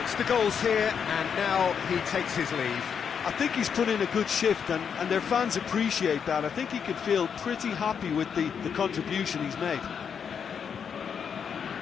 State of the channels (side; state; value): right; quieter; 7.1 dB